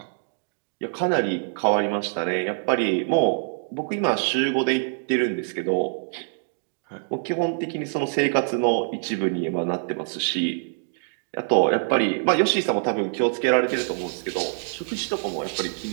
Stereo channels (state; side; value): silent; left; digital silence